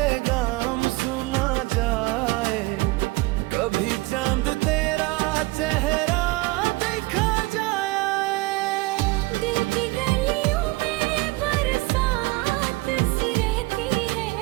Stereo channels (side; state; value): left; quieter; 22.0 dB